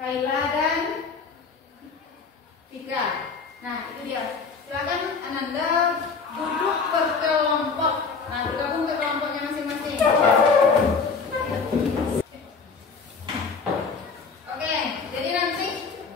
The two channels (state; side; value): quieter; right; 5.0 dB